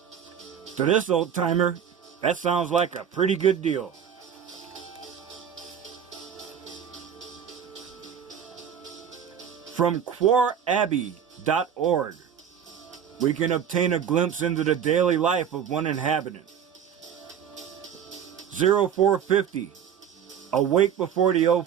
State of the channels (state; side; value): quieter; left; 8.3 dB